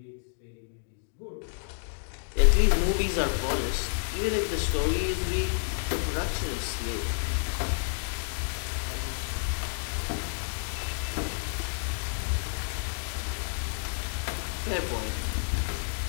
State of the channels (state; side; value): silent; right; digital silence